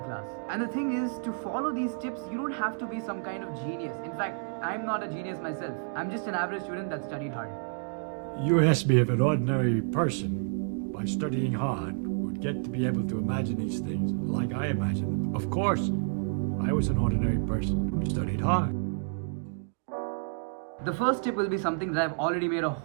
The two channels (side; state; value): left; silent; digital silence